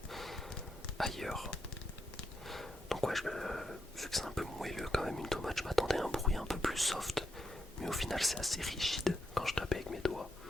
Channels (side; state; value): both; normal; correlation 0.83